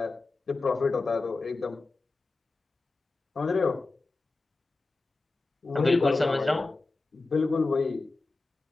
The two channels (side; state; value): right; quieter; 3.5 dB